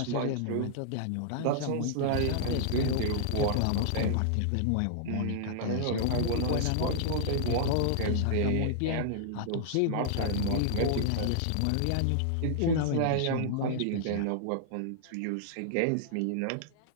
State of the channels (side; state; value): both; different; correlation -0.01